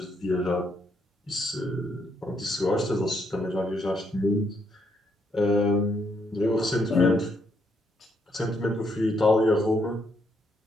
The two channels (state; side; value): normal; both; correlation 0.75